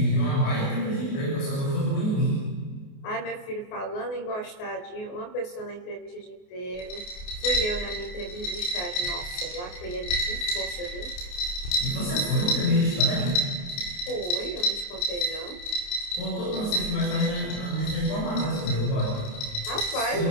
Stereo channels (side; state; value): right; late; 28 ms